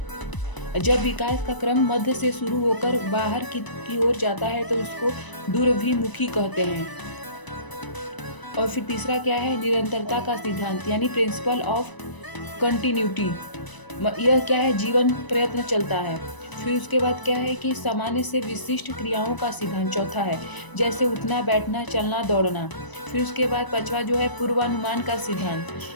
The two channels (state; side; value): late; right; 1.0 ms